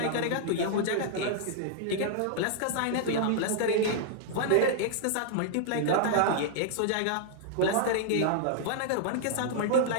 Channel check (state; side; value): different; both; correlation -0.01